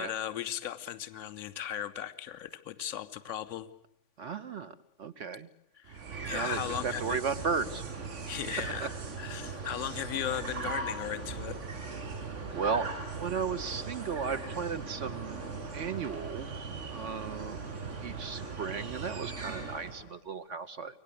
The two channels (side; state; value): left; late; 3.5 ms